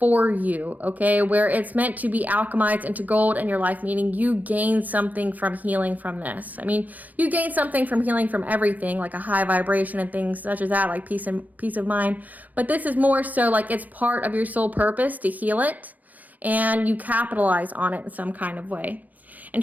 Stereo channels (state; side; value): late; left; 0.081 ms